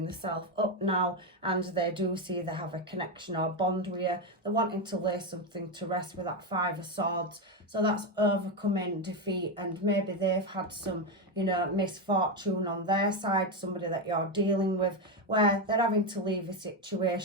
themselves up now, and they do see they have a connection or bond with you. They're wanting to lay something to rest with that Five of Swords. So that's overcoming defeat, and maybe they've had some, you know, misfortune on their side, somebody that you're dealing with, where they're having to leave a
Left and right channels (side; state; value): both; normal; correlation 0.10